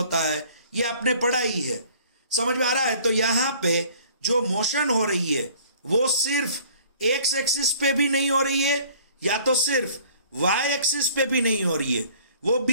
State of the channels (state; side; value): inverted; both; correlation -0.53